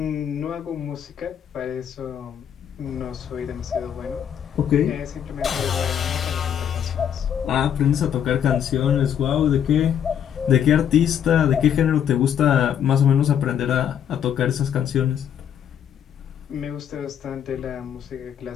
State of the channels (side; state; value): right; quieter; 9.0 dB